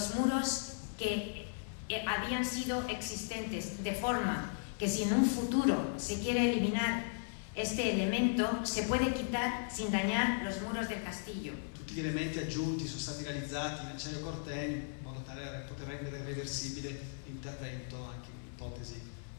muros que habían sido existentes, de forma que si en un futuro se quiere eliminar este elemento, se puede quitar sin dañar los muros del castillo. Tutti gli elementi aggiunti sono stati realizzati in acciaio corten in modo tale da poter rendere irreversibile l'intervento anche in ipotesi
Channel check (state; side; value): silent; right; 53 dB below the other